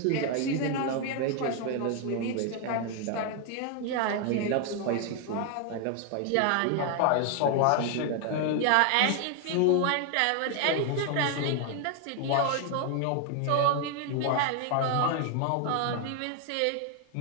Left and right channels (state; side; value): different; both; correlation 0.00